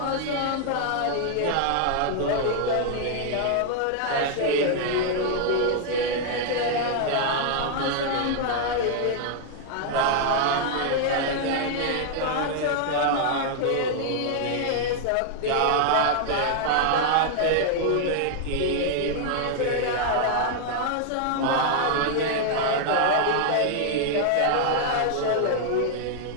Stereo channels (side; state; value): both; different; correlation 0.00